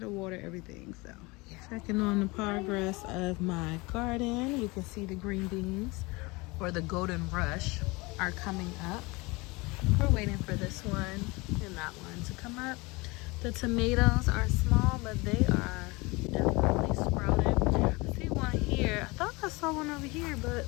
water everything, so yeah. Checking on the progress of my garden. You can see the green beans, or the golden rush, are coming up. We're waiting for this one and that one to come up. The tomatoes are small, but they are definitely sprouted. I see one here. I thought I saw one over here, but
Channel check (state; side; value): quieter; right; 24.7 dB